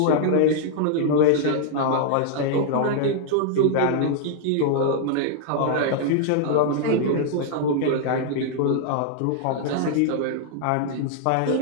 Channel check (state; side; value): different; both; correlation -0.01